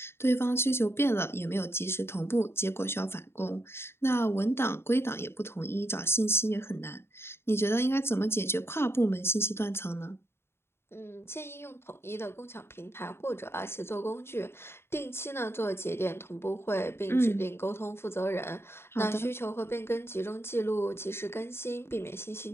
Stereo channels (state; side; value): late; right; 0.12 ms